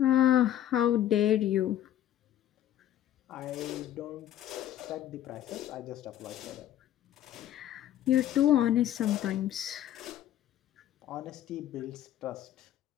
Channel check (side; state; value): right; quieter; 11.9 dB